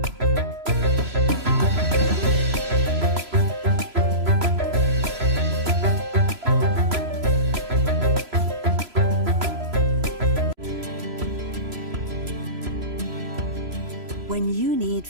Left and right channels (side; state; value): left; late; 3.0 ms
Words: When you need